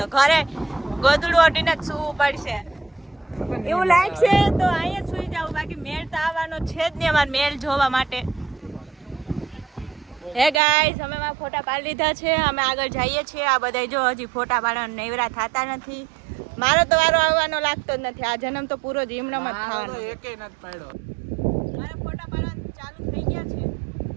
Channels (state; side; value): drops out; left; at 10.6 s